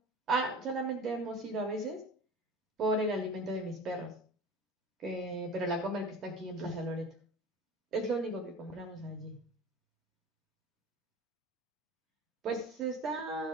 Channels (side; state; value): both; normal; correlation 0.37